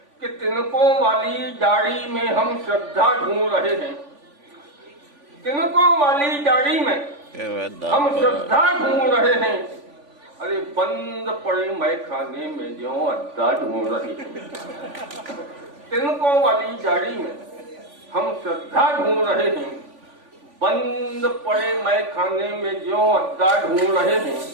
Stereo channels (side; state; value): left; late; 3.5 ms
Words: कि तिनकों वाली जाड़ी में हम श्रद्धा ढूंढ रहे हैं। तिनकों वाली जाड़ी में हम श्रद्धा ढूंढ रहे हैं। अरे बंद पड़े मैखाने में जो अड्डा ढूंढ रहे हैं। तिनकों वाली जाड़ी में हम श्रद्धा ढूंढ रहे हैं। बंद पड़े मैखाने में जो अड्डा ढूंढ रहे हैं।